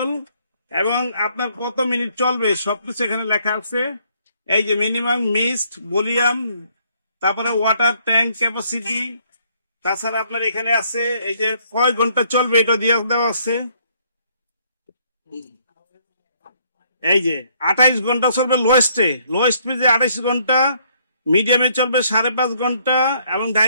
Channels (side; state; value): both; inverted; correlation -0.67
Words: এবং আপনার কত মিনিট চলবে সবকিছু এখানে লেখা আছে। এই যে মিনিমাম মিস্ট ভলিউম, তারপরে ওয়াটার ট্যাঙ্ক ক্যাপাসিটি, তাছাড়া আপনার এখানে আছে এই যে কয় ঘন্টা চলবে এটা দিয়ে দেওয়া আছে। এই যে 28 ঘন্টা চলবে লোয়েস্টে, লোয়েস্ট পেজে 28 ঘন্টা, মিডিয়ামে চলবে 5.5 ঘন্টা, এবং